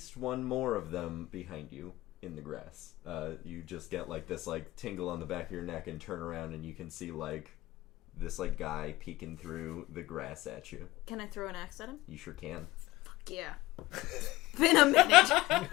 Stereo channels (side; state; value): right; quieter; 18.2 dB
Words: one more of them behind you in the grass. You just get like this like tingle on the back of your neck and turn around and you can see like this like guy peeking through the grass at you. Can I throw an axe at him? You sure can. Fuck yeah. Been a